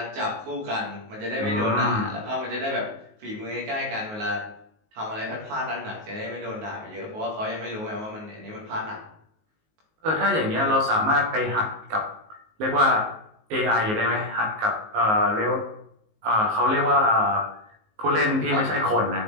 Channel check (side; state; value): left; late; 19 ms